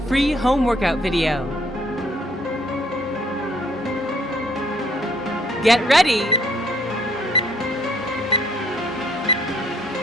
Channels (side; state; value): both; normal; correlation 0.64